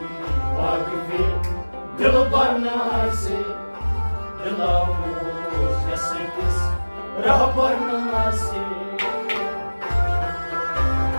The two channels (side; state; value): both; inverted; correlation -1.00